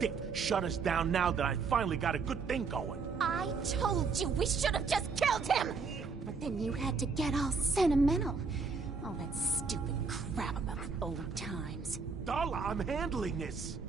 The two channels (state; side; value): quieter; left; 4.9 dB